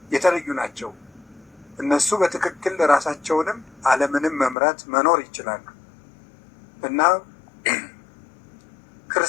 የተለዩ ናቸው። እነሱ በትክክል ራሳቸውንም ዓለምንም መምራት መኖር ይችላሉ። እና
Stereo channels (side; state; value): right; drops out; at 4.5 s